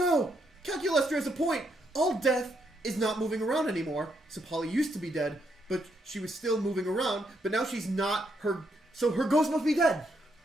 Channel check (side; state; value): both; normal; correlation 0.77